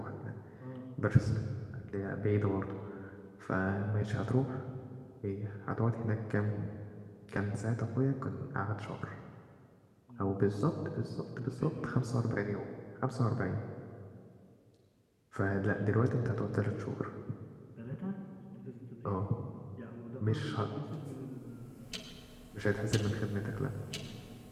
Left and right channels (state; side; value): identical; both; correlation 1.00